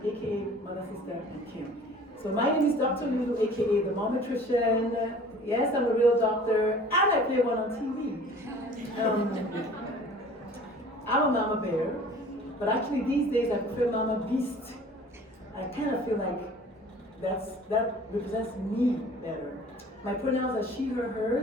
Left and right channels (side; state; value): both; normal; correlation 0.47